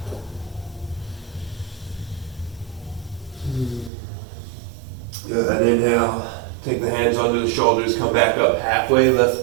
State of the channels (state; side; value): drops out; left; at 3.9 s